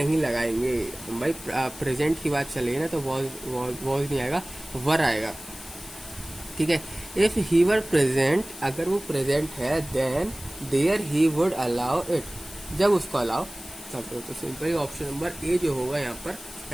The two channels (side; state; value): left; noise; hiss, 15 dB below the sound